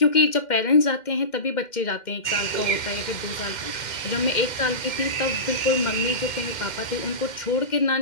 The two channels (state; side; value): late; right; 2.1 ms